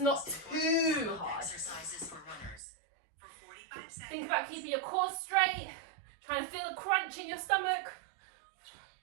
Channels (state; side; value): drops out; left; at 2.6 s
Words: too hard. Exercises for runners for 45 seconds. Think about keeping your core straight, trying to feel a crunch in your stomach.